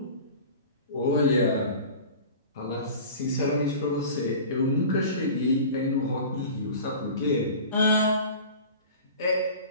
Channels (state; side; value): inverted; both; correlation -0.38